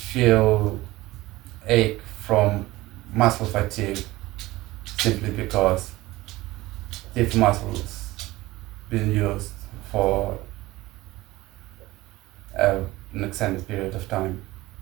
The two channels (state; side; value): quieter; left; 18.7 dB